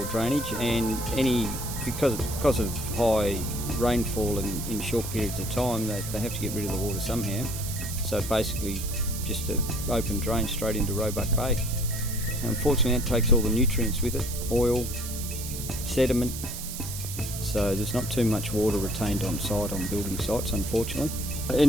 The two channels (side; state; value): right; noise; hiss, 8 dB below the sound